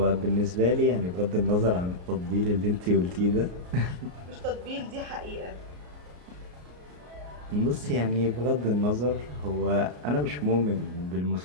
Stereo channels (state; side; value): late; left; 33 ms